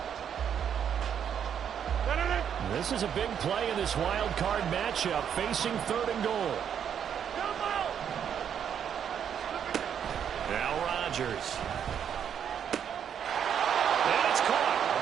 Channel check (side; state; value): left; quieter; 8.5 dB